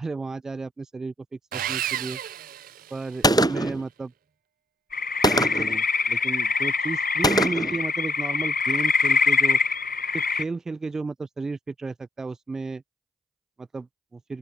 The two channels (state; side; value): normal; both; correlation 0.72